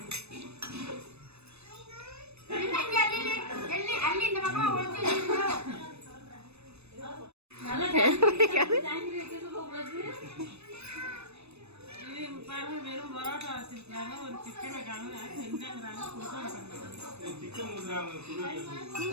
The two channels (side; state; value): left; late; 0.80 ms